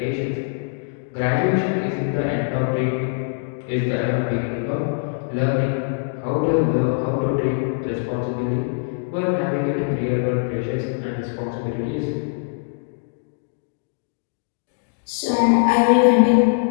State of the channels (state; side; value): silent; right; digital silence